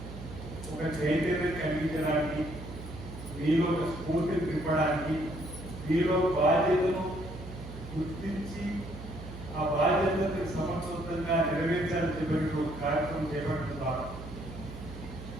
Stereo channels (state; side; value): noise; right; hum, 12 dB below the sound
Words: ఒక చైతన్యం కలిగించడానికి మీలో ఒక స్ఫూర్తిని నింపడానికి మీలో బాధ్యతను గుర్తించి ఆ బాధ్యతను సమర్థవంతంగా నెరవేర్చాలని చెప్పినట్టు ఒక కార్యక్రమం చేపట్టడం ద్వారా